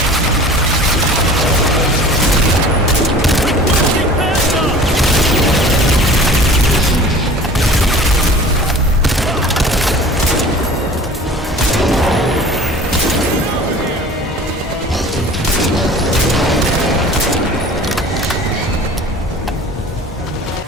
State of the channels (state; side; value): normal; both; correlation 0.43